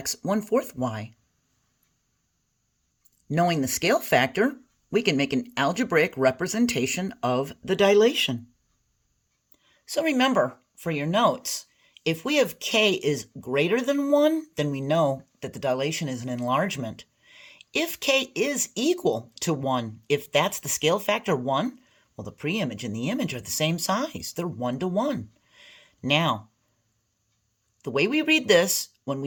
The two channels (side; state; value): both; identical; correlation 1.00